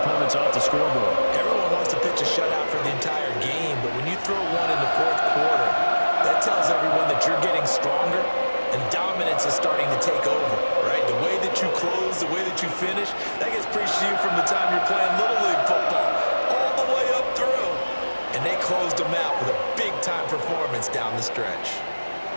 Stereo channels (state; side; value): inverted; both; correlation -1.00